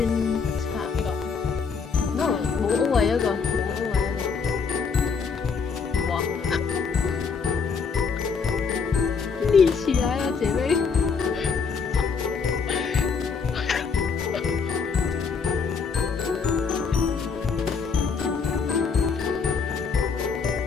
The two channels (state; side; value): quieter; right; 5.5 dB